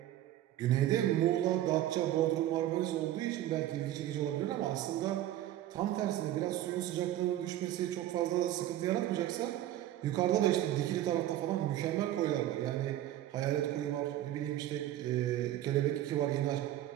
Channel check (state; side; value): quieter; left; 13.3 dB